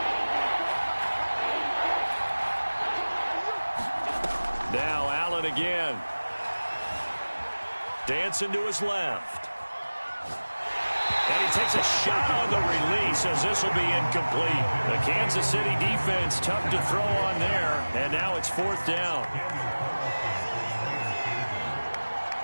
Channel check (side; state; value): both; inverted; correlation -1.00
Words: Now Allen again. Dancing to his left. And he takes a shot on the release as this will be incomplete. The Kansas City defense tough to throw on there. And now it's fourth down.